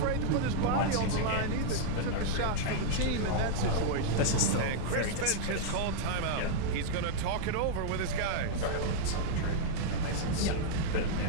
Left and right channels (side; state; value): both; different; correlation -0.01